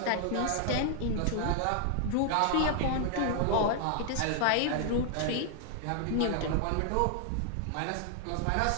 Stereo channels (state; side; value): different; both; correlation 0.00